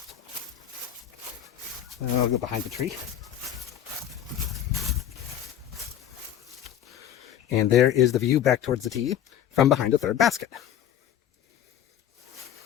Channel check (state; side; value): quieter; right; 10.4 dB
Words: I'll go behind the tree. And there is the view back towards the tee from behind the third basket.